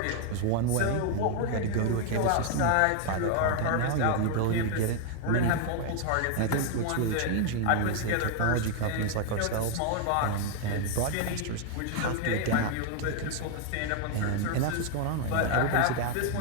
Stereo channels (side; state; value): both; different; correlation 0.00